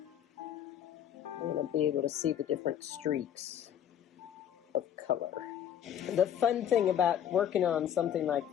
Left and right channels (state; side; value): quieter; right; 9.8 dB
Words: You're going to be able to see the different streaks of color. The fun thing about working on something like